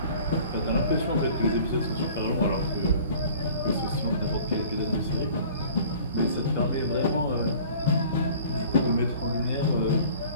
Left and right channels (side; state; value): both; inverted; correlation -0.48